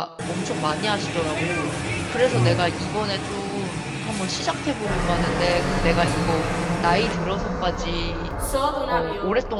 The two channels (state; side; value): identical; both; correlation 1.00